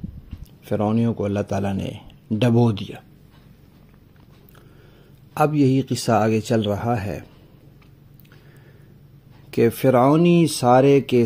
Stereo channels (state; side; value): identical; both; correlation 1.00